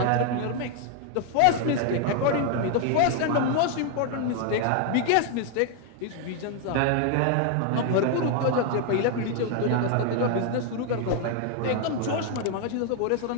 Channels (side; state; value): both; different; correlation 0.00